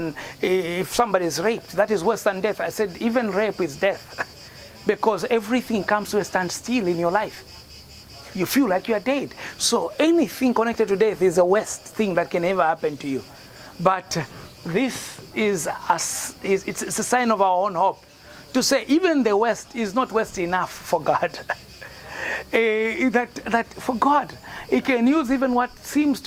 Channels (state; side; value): identical; both; correlation 1.00